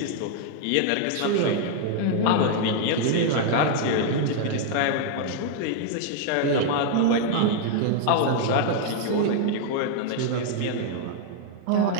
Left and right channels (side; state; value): both; different; correlation 0.00